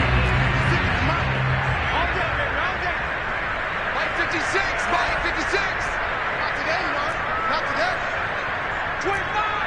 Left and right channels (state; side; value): identical; both; correlation 1.00